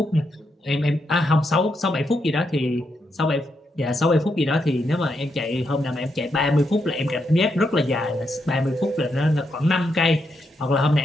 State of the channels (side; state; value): both; normal; correlation 0.81